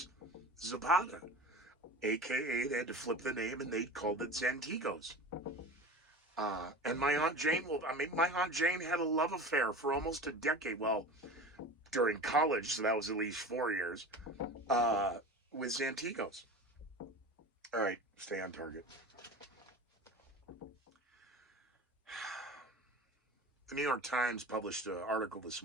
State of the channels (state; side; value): normal; both; correlation 0.34